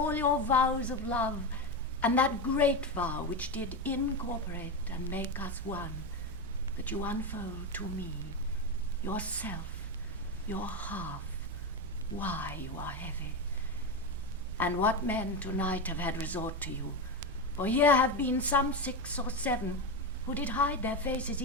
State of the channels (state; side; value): normal; both; correlation 0.15